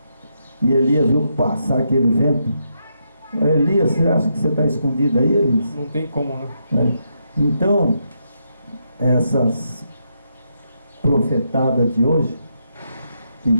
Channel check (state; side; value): inverted; both; correlation -0.81